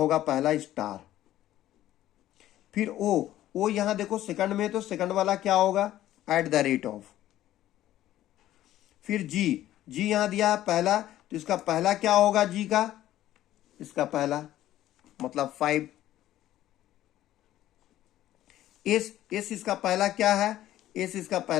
पहला स्टार। फिर O यहां देखो सेकंड में, तो सेकंड वाला क्या होगा? At the rate of. फिर G यहां दिया है पहला, तो इसका पहला क्या होगा? G का, इसका पहला मतलब 5। S इसका पहला क्या है? S इसका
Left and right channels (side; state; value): right; quieter; 13.6 dB